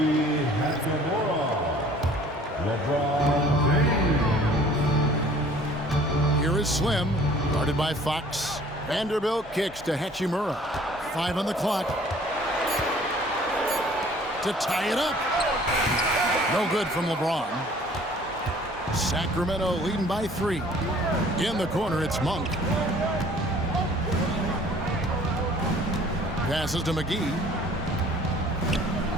Here is Slim, guarded by Fox. Vanderbilt kicks to Hachimura. 5 on the clock. To tie it up. No good from LeBron. Sacramento leading by 3. In the corner, it's Monk. Passes to McGee.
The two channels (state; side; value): normal; both; correlation 0.53